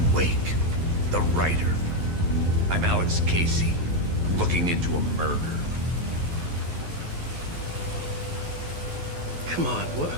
Wake, the writer. I'm Alex Casey, looking into a murder. Come on,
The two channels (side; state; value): left; late; 11 ms